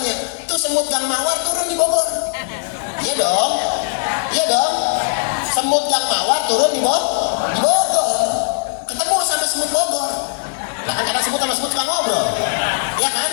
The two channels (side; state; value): right; silent; digital silence